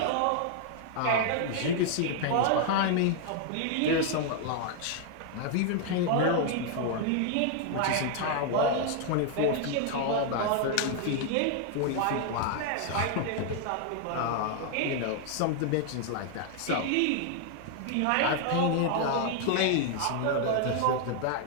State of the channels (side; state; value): both; different; correlation 0.00